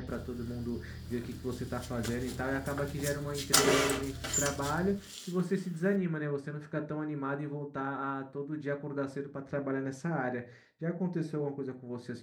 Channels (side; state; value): both; identical; correlation 1.00